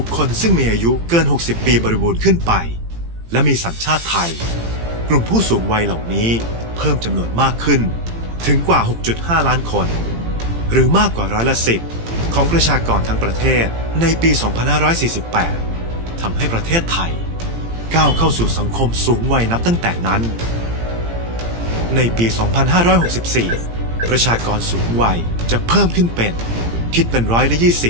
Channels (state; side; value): late; left; 18 ms